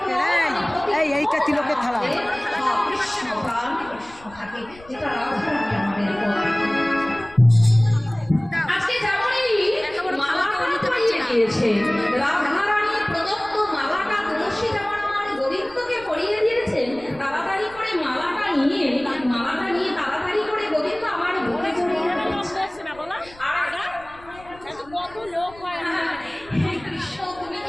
এইটা তিলকের থালা। আজকে যেমনই মালাটা পরিয়ে দিয়েছে, রাধারানী প্রদত্ত মালাটা তুলসী যেমন আমার গোবিন্দকে পরিয়ে দিয়েছেন, তাড়াতাড়ি করে মালাটা নিয়ে তাড়াতাড়ি করে গোবিন্দ আমার বুকে জড়িয়ে রেখেছে। আর কত লোক হয়, হে কৃষ্ণ তুমি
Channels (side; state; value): left; noise; rumble, 23 dB below the sound